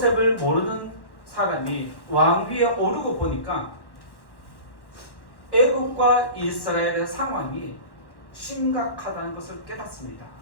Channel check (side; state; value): right; late; 1.1 ms